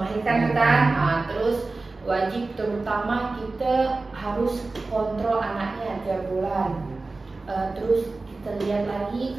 kan, terus wajib terutama kita harus kontrol anaknya tiap bulan. Terus kita lihat lagi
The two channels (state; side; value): quieter; left; 3.5 dB